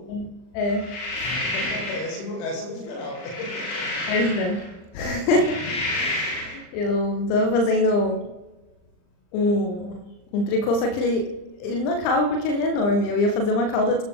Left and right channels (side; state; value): right; late; 39 ms